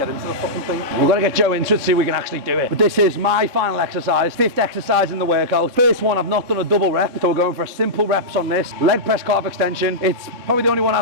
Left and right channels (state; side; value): late; left; 3.7 ms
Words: into the fucking thing. We're going to get Joe into it, see if we can actually do it. But this is my final exercise, 5th exercise in the workout. First one, I've not done a double rep, so we're going for a simple reps on this. Leg press calf extension. It's probably the only one